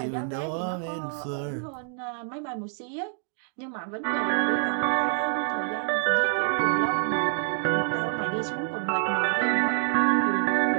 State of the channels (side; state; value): left; silent; 60 dB below the other